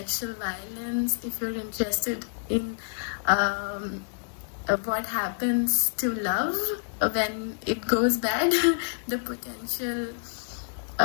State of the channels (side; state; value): right; silent; digital silence